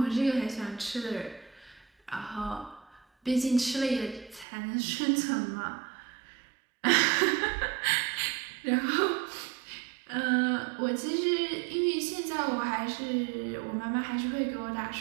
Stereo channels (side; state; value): left; drops out; at 4.5 s